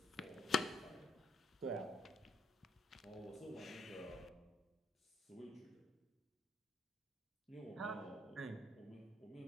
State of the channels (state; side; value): normal; both; correlation 0.71